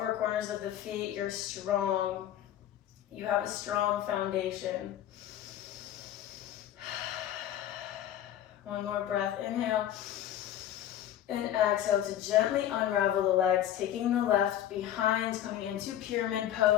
corners of the feet. You're strong. You have a strong foundation. One more breath. Inhale. And exhale to gently unravel the legs, taking the left behind, coming into pyramid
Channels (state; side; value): quieter; right; 11.5 dB